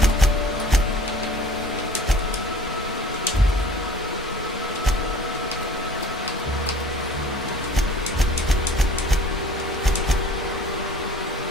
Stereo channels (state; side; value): normal; both; correlation 0.48